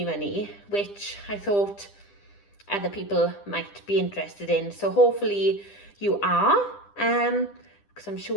money, which I thought other people might be interested in. So hopefully you are, because I'm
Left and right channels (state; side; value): late; right; 10 ms